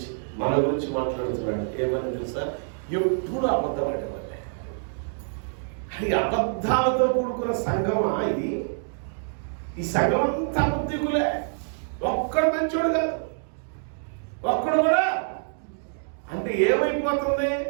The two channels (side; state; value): left; silent; digital silence